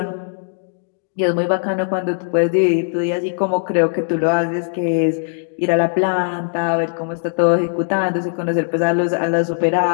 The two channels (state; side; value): silent; right; 66 dB below the other